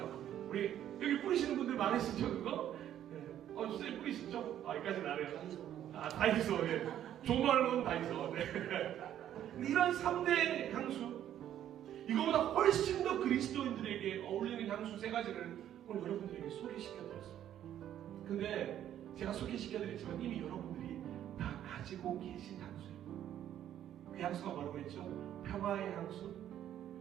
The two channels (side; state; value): left; quieter; 11.1 dB